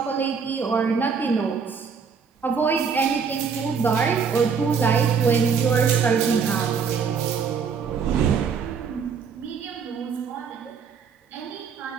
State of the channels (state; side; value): quieter; left; 6.1 dB